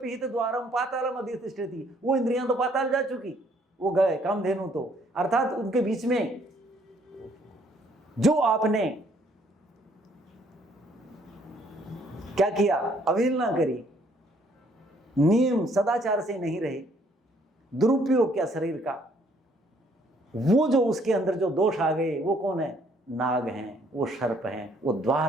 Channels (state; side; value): normal; both; correlation 0.65